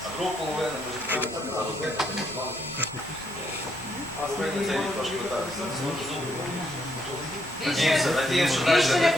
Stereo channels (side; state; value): both; normal; correlation 0.74